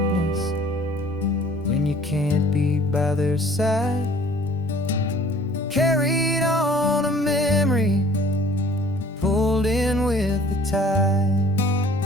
when you can't be by their side. Carried on a memory, pulled in with the tide.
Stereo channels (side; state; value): both; normal; correlation 0.53